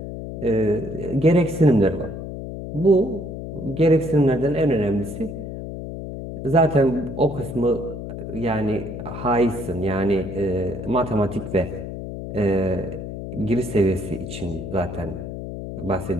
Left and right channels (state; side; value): noise; left; hum, 8 dB below the sound